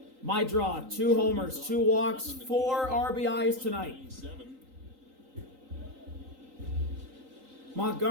Mydroth, 2 homers, 2 walks, 4 RBIs tonight. 7.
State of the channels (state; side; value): late; left; 3.8 ms